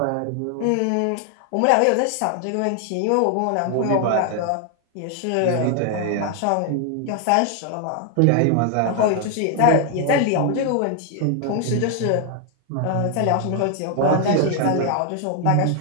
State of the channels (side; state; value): both; different; correlation 0.00